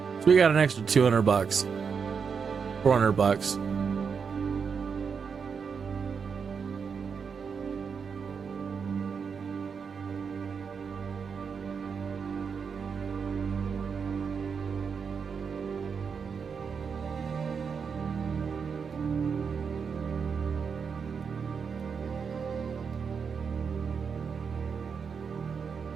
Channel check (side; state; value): left; quieter; 6.1 dB